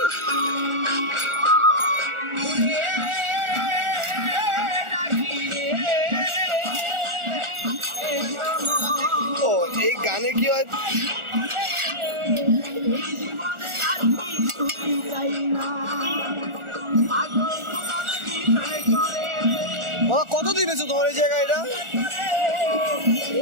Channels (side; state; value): left; late; 1.4 ms